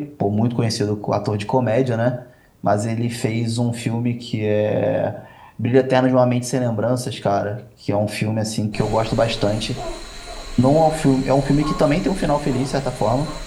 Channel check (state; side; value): identical; both; correlation 1.00